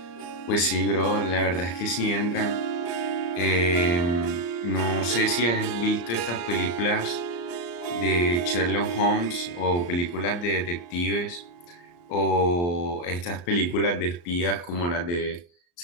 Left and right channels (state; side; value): late; right; 34 ms